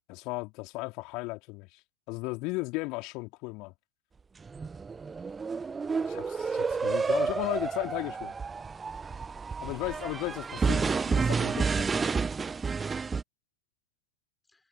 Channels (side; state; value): both; normal; correlation 0.72